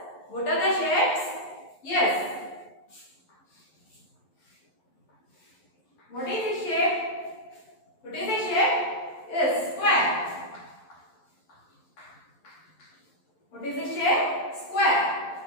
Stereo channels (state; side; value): late; right; 11 ms